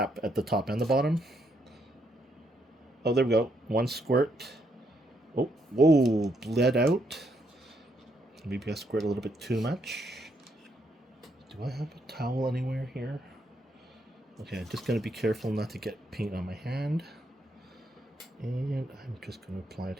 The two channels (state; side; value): normal; both; correlation 0.76